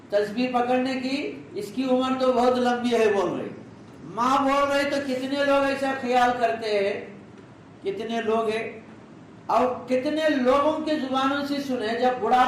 تسبیح پکڑنے کی، اس کی عمر تو بہت لمبی ہے. بول رہی ماں بول رہی تو کتنے لوگ ایسا خیال کرتے ہیں، کتنے لوگ ہیں. اور کتنے لوگوں کے زبانوں سے سنے جب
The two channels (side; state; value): both; identical; correlation 1.00